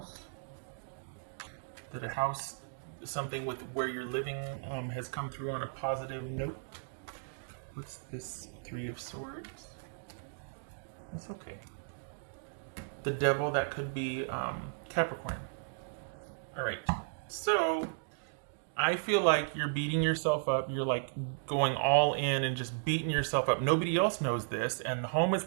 That a house, something with where you're living, has come through on a positive note. What's this? Three of Swords. That's okay. The Devil, that could be Capricorn. All right. So I feel like you're beating yourself up. You're like going all in and just beating yourself up. Nobody else knows this, and the home is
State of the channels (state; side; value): silent; left; digital silence